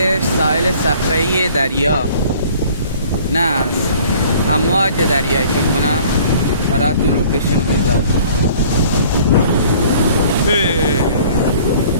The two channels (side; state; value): both; inverted; correlation -0.52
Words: ساحل صخره‌ای دریا نه، امواج دریایی فکر کنم. براتون لوکیشن میذارم.